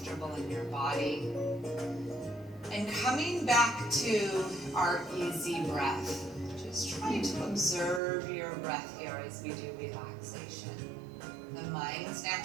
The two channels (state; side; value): drops out; left; at 8.0 s